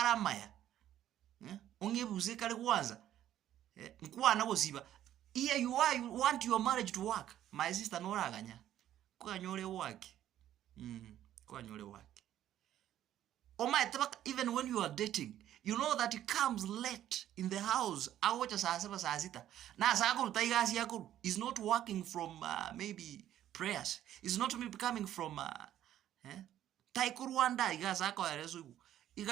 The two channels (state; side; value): quieter; left; 11.9 dB